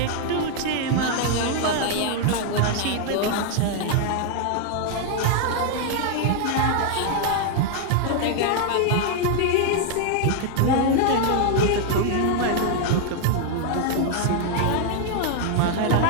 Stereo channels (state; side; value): different; both; correlation 0.00